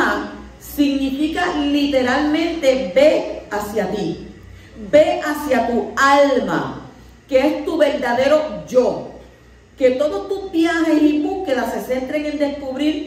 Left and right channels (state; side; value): identical; both; correlation 1.00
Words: significa literalmente ve hacia ti, ve hacia tu alma, que es tu verdadero yo. Que todos tus viajes y búsquedas se centren en